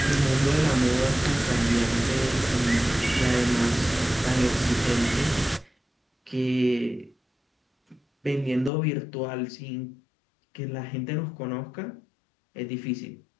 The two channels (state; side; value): drops out; right; at 8.7 s